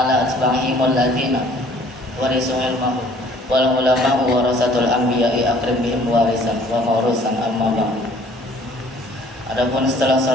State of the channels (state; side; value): normal; both; correlation 0.56